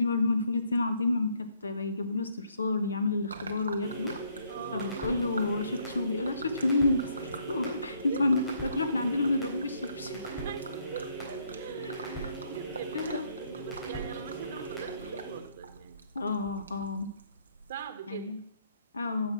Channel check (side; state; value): both; inverted; correlation -0.69